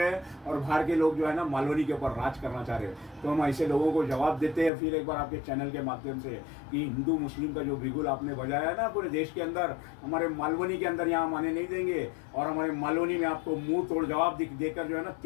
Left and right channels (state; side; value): drops out; right; at 4.7 s